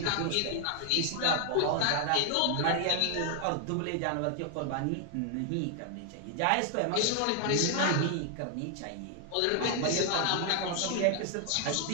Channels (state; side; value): different; both; correlation 0.00